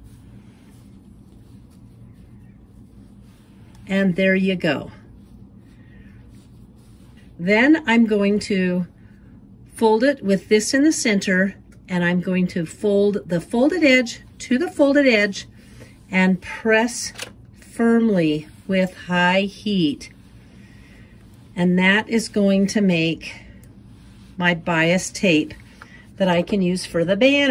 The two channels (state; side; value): identical; both; correlation 1.00